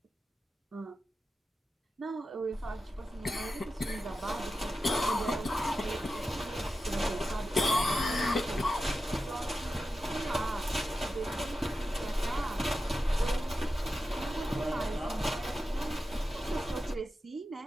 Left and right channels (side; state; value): both; normal; correlation 0.91